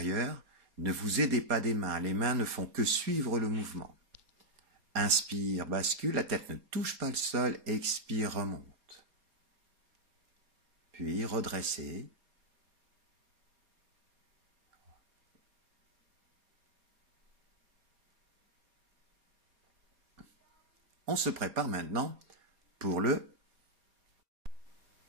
Ne vous aidez pas des mains, les mains ne font que suivre le mouvement. Inspire, bascule, la tête ne touche pas le sol, expire, remonte. Puis redressez. On se prépare maintenant pour le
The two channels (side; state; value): left; late; 4.2 ms